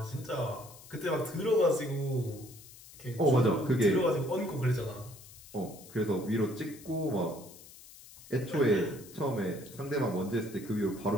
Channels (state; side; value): noise; left; hiss, 19 dB below the sound